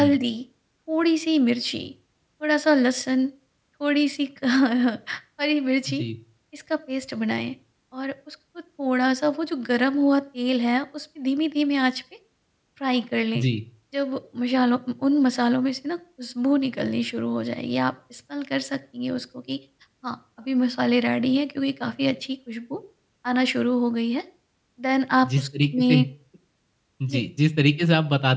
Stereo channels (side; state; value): both; identical; correlation 1.00